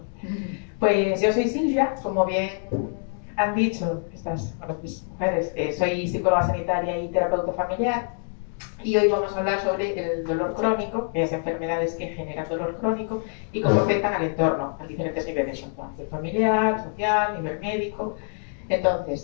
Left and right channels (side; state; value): right; silent; 59 dB below the other